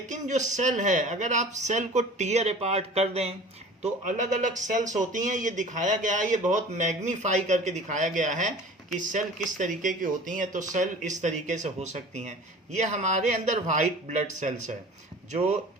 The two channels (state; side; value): normal; both; correlation 0.42